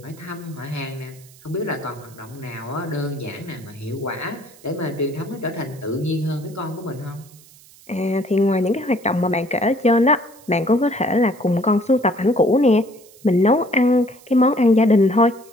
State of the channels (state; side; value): noise; right; hiss, 24 dB below the sound